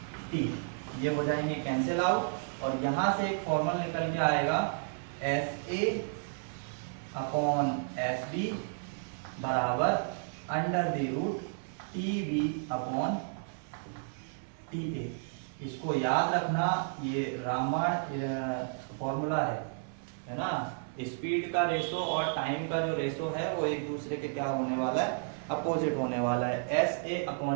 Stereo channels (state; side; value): silent; left; 56 dB below the other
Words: टी, ये हो जाएंगे कैंसिल आउट, और यहां से एक फॉर्मूला निकल के आएगा एस ए अपॉन एस बी बराबर under the root T B upon T A. इसको याद रखना, ये रामबाण फॉर्मूला है ना। स्पीड का रेशो और टाइम का जो रेशो है वो एक दूसरे के क्या होने वाला है, अपोजिट होने वाला है। एस ए